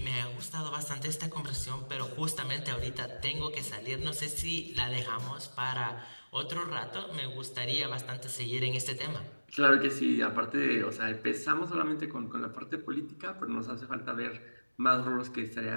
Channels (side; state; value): both; inverted; correlation -1.00